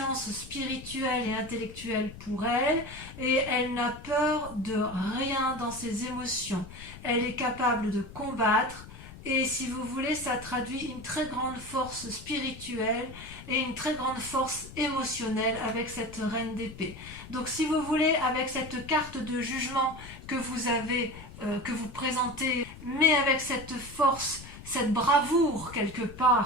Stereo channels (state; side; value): noise; left; rumble, 15 dB below the sound